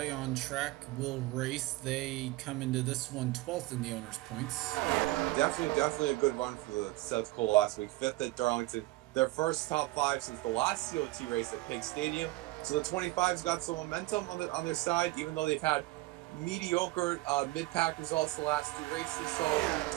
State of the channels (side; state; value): left; quieter; 19.8 dB